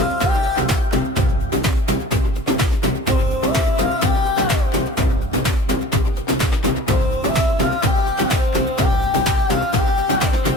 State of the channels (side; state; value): both; normal; correlation 0.45